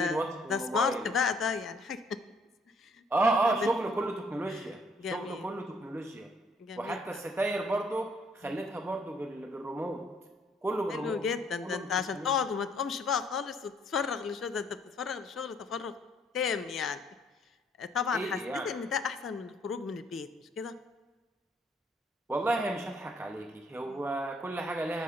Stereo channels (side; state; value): both; normal; correlation 0.65